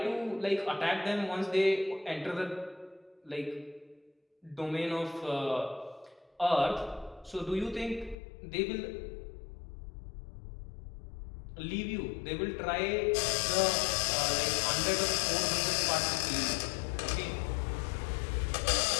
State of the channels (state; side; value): drops out; right; at 8.2 s